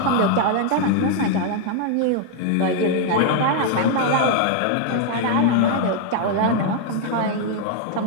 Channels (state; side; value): different; both; correlation 0.00